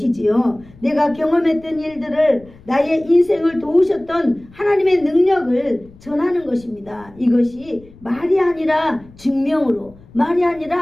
내가 경험했던 일들을, 나의 인생을 도우셨던 하나님의 능력을 전하는 것입니다. 이것이 말이 아니라 증명으로, 말이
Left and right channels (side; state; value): left; noise; rumble, 24 dB below the sound